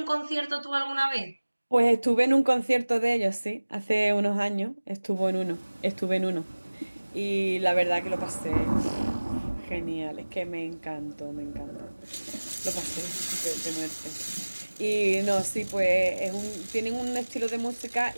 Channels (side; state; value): both; inverted; correlation -1.00